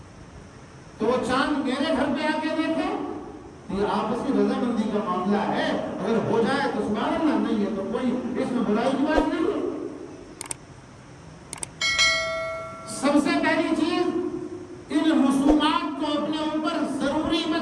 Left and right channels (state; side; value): identical; both; correlation 1.00